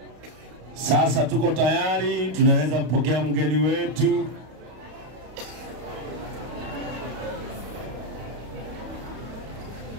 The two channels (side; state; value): left; late; 32 ms